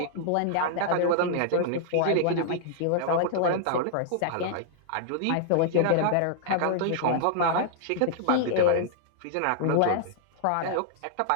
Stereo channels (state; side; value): different; both; correlation -0.01